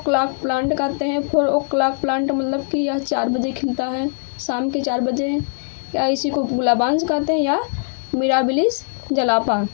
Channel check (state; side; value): silent; right; digital silence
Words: प्लांट कहते हैं। 4 o'clock प्लांट मतलब कि यह 4 बजे खिलता है, शाम के 4 बजे, या इसी को गुलाबांस कहते हैं या मिराबिलिस जलापा।